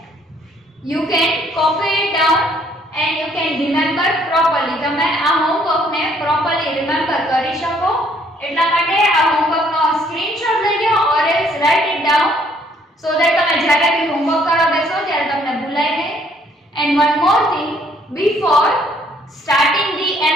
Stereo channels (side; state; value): both; normal; correlation 0.64